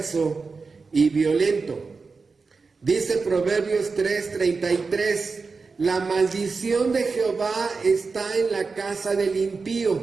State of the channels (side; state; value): left; quieter; 4.5 dB